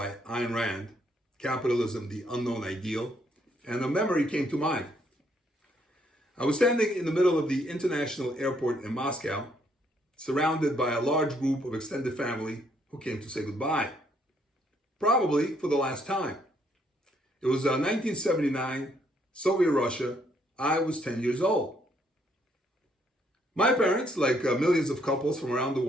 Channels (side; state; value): both; normal; correlation 0.70